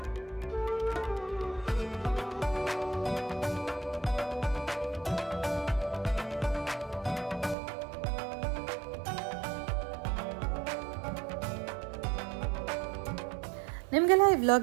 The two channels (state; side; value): drops out; left; at 7.6 s